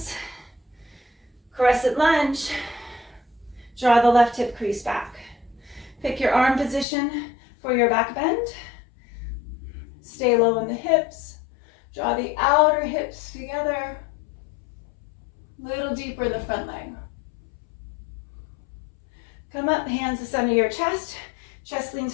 Crescent lunge. Draw the left hip crease back. Pick your arm position for your back bend. Stay low in the hips. Draw the outer hips together. A little deeper in the front leg. Come up, hands to center of your chest. Chest leans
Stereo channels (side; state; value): right; drops out; at 6.9 s